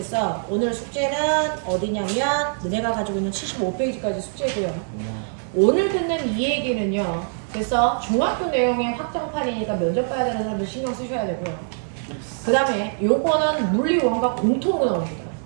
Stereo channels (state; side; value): silent; left; 63 dB below the other